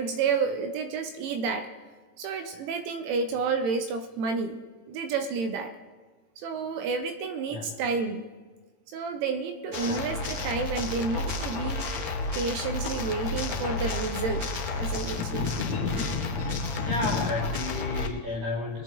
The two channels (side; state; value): left; late; 18 ms